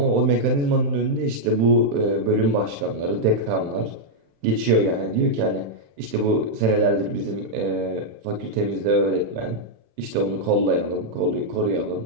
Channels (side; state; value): left; late; 35 ms